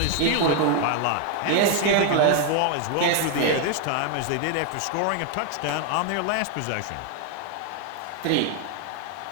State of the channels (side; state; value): both; different; correlation 0.00